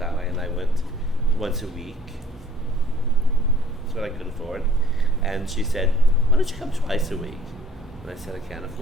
and I went once a week. That's what I could afford. And she said, "Why don't you come twice a week?" And I said, "I can't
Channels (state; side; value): normal; both; correlation 0.55